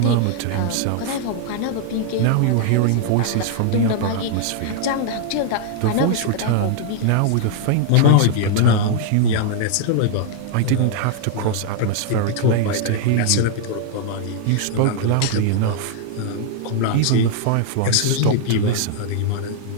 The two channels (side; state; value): both; different; correlation -0.01